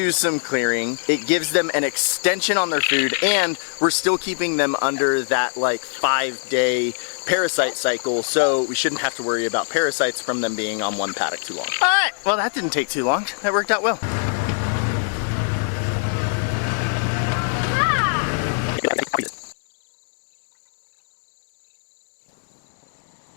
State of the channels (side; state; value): right; silent; digital silence